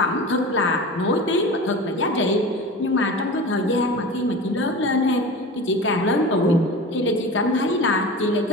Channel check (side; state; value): both; normal; correlation 0.32